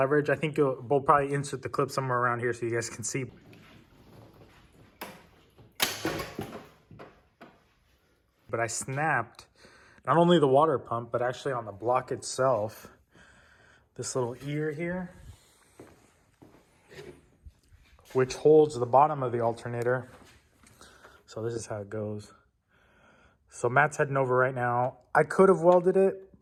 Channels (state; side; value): identical; both; correlation 1.00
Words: I think we'll probably insert the clip somewhere around here so you guys can see. But I snapped not only the water pump, but actually on the block itself, this little ear here, which holds the bottom of the alternator. So this is how it goes. So Matt's heading over right now. I could have welded it,